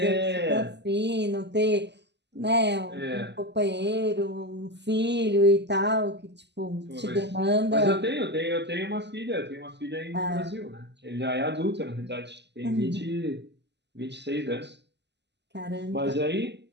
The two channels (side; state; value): left; late; 0.50 ms